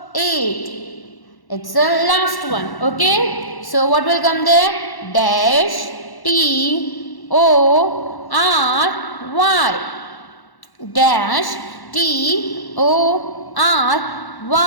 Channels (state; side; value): late; right; 1.1 ms